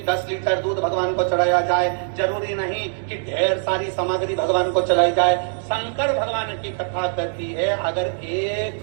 10 लीटर दूध भगवान को चढ़ाया जाए, जरूरी नहीं कि ढेर सारी सामग्री भगवान को चढ़ाई जाए। शंकर भगवान की कथा कहती है, अगर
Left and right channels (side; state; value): left; silent; digital silence